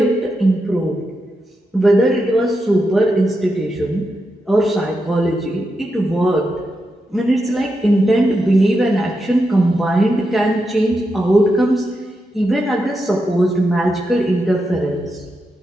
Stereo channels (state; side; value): normal; both; correlation 0.86